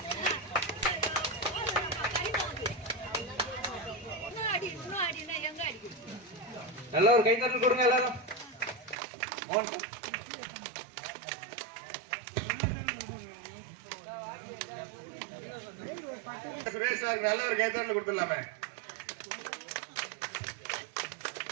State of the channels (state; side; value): drops out; left; at 9.0 s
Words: நல்ல ஒரு கைத்தட்டல் கொடுங்க எல்லாரும். சுரேஷ் சார் நல்ல ஒரு கைத்தட்டல் கொடுத்துடலாமே.